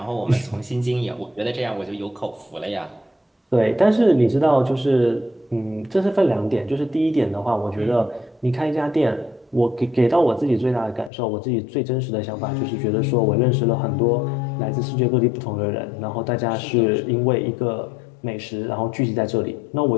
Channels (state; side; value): drops out; right; at 11.1 s